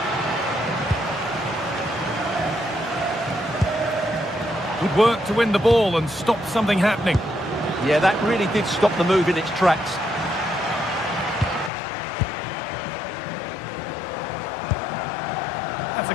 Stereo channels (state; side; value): drops out; right; at 11.7 s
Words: Good work to win the ball and stop something happening. Yeah, that really did stop the move in its tracks. That's a